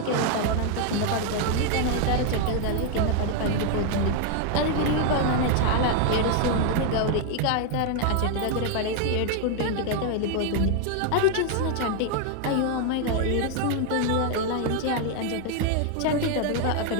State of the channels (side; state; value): both; different; correlation 0.01